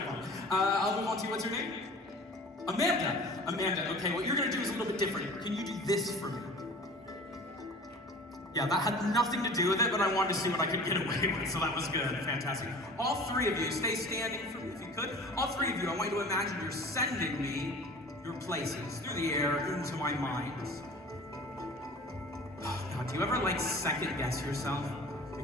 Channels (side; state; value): both; normal; correlation 0.42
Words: one. I'll move on to you, what's your name? Amanda. Amanda, okay, what you're gonna do is a little bit different. Can you do this for me? Yeah, that had nothing to do with it, but I wanted to see what I could get away with, so that was good, fantastic. All three of you, stay standing for me if you could. All three of you, I want you to imagine you're sending me your places through the air into my mind. Oh, God, do you ever second guess yourself?